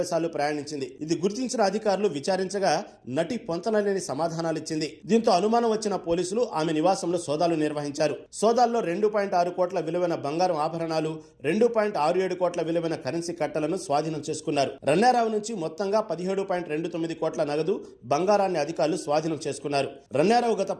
సార్లు ప్రయాణించింది. ఇది గుర్తించిన అధికారులు విచారించగా నటి పొంతనలేని సమాధానాలిచ్చింది. దీంతో అనుమానం వచ్చిన పోలీసులు ఆమె నివాసంలో సోదాలు నిర్వహించారు. సోదాల్లో 2.6 కోట్ల విలువైన బంగారం ఆభరణాలు, 2.67 కోట్ల విలువైన కరెన్సీ కట్టలను స్వాధీనం చేసుకున్నారు. రన్యారావు నుంచి మొత్తంగా 17.29 కోట్ల నగదు, బంగారాన్ని అధికారులు స్వాధీనం చేసుకున్నారు. రన్యారావు గత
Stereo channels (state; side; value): identical; both; correlation 1.00